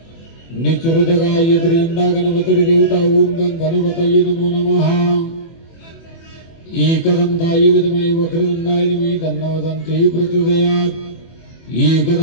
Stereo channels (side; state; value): right; late; 24 ms